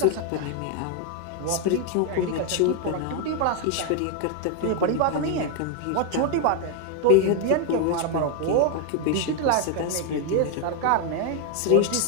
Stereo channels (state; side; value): different; both; correlation 0.01